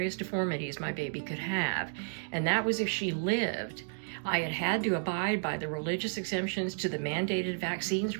deformities my baby could have, and that was if she lived. I had had to abide by the religious exemptions to the mandated vaccines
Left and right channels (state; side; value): silent; left; digital silence